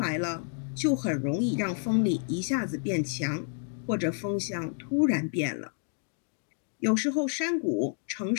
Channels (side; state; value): right; silent; 56 dB below the other